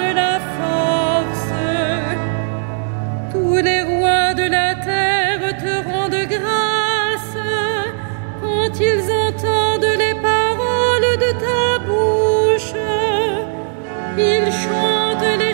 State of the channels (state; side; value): silent; left; 68 dB below the other